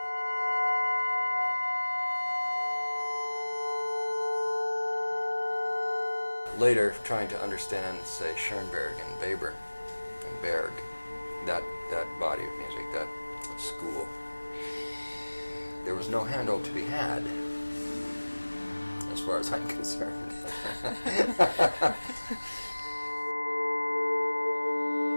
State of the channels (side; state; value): both; inverted; correlation -1.00